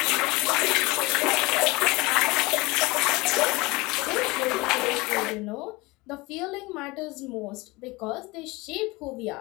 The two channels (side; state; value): right; quieter; 23.1 dB